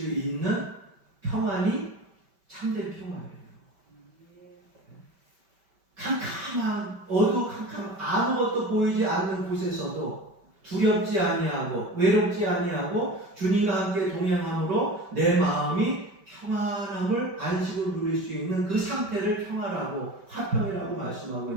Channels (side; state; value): left; late; 5.2 ms